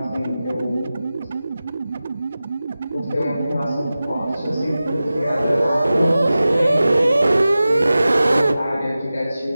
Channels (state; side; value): inverted; both; correlation -0.95